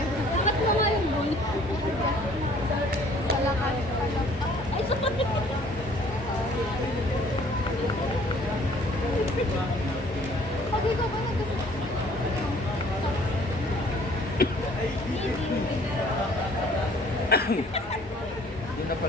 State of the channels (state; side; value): normal; both; correlation 0.56